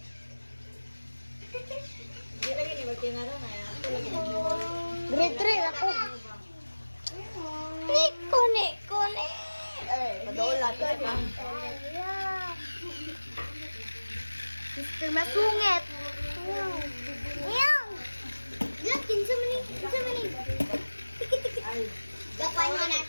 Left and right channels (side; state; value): both; inverted; correlation -1.00